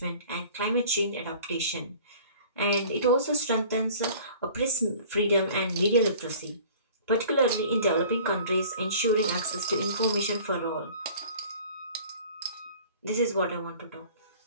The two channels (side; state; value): both; inverted; correlation -0.47